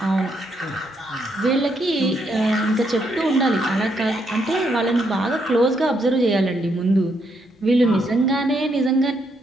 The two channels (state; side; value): normal; both; correlation 0.76